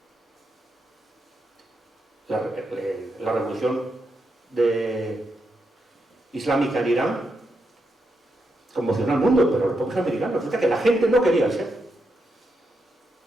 La revolución islámica en Irán conmocionó al mundo, pero los propios americanos, resulta que la gente no quería ser.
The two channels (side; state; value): both; normal; correlation 0.83